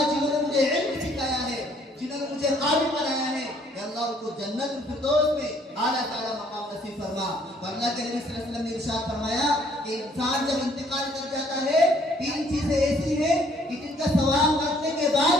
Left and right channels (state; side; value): normal; both; correlation 0.63